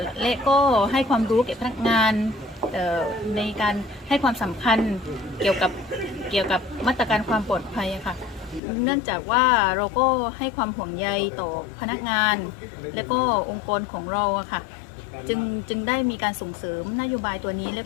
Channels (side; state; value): right; drops out; at 8.6 s